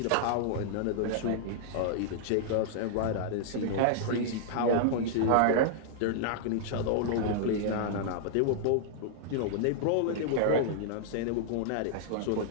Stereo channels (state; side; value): different; both; correlation -0.01